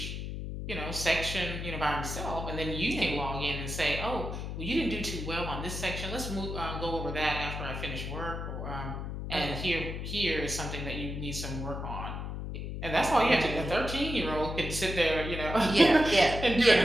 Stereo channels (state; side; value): noise; left; hum, 5 dB below the sound